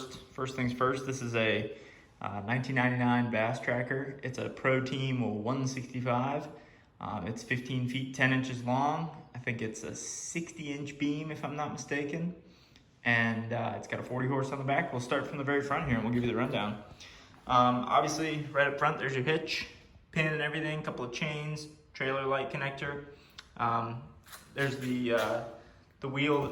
things first, this is a 1999 Bass Tracker. It's a Pro Team 165. It's 15 feet 10 inches long. I think it's a 60-inch beam, if I'm not mistaken. And it's got a 40 horse on the back. We'll start from the very front here and we'll give you the rundown. Obviously, right up front, there's your hitch, pin and everything, couple of chains, trailer light connector. There's the wheel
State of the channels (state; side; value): identical; both; correlation 1.00